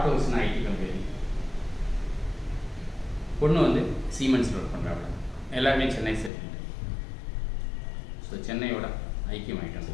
ஹவுஸ்னு ஐடி கம்பெனி. பொண்ணு வந்து சீமெண்ட்ஸில் ஒர்க் பண்ணுறாங்க. எல்லாருமே சென்னை செட்டில். ஸோ சென்னையோட ஐக்கியம் ஆகிட்டோம்.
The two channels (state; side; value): drops out; right; at 6.3 s